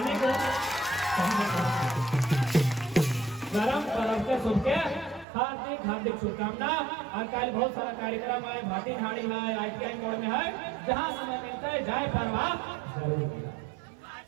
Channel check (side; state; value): left; drops out; at 5.2 s